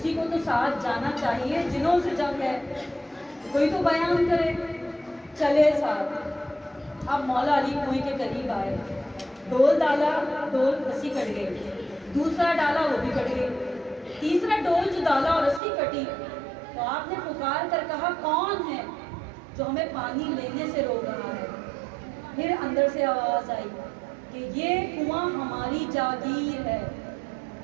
کو تو ساتھ جانا چاہیے، جنہوں سے جنگ ہے کوئی تو بیان کرے. چلے ساتھ. اب مولا علی کنویں کے قریب آئے، ڈول ڈالا، ڈول رسی کٹ گئی. دوسرا ڈالا، وہ بھی کٹ گئی. تیسرا ڈول جو ڈالا اور رسی کٹی تو آپ نے پکار کر کہا کون ہے جو ہمیں پانی لینے سے روک رہا ہے؟ پھر اندر سے آواز آئی کہ یہ کنواں ہماری جاگیر ہے،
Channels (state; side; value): drops out; left; at 15.6 s